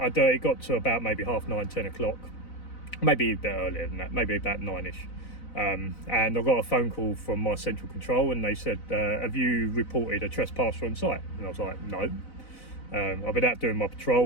it got to about maybe 9:30, 10 o'clock, maybe a bit earlier than that, maybe about 9ish, and I got a phone call from my central control, and they said, have you reported a trespasser on site? And I was like, no. I've been out doing my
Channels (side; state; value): right; late; 4.0 ms